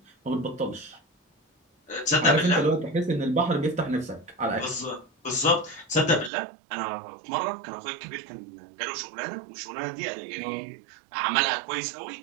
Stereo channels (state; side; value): drops out; left; at 6.3 s